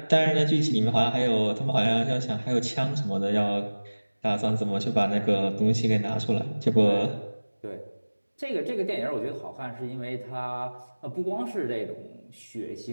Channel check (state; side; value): inverted; both; correlation -1.00